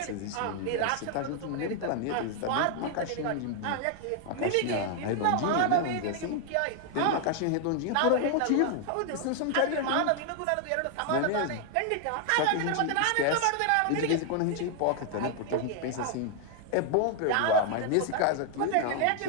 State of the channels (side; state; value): both; different; correlation 0.00